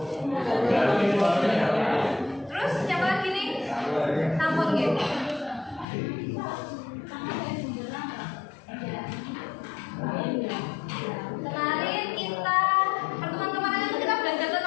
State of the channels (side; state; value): right; drops out; at 5.9 s